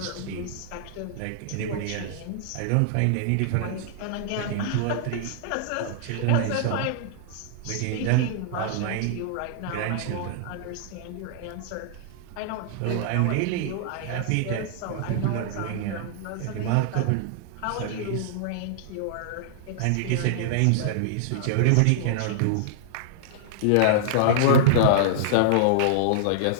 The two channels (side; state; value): both; different; correlation -0.01